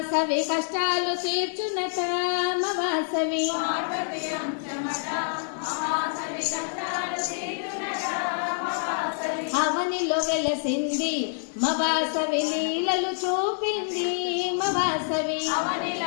కష్టాలు తీర్చునట మవాసవి అవనిలో వెలసింది మవాసవి లీలలు చూపింది మవాసవి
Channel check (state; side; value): silent; right; digital silence